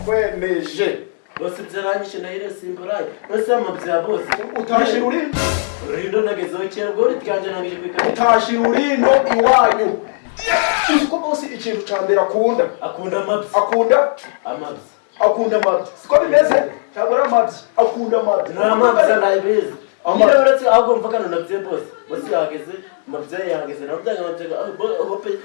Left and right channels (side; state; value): right; silent; digital silence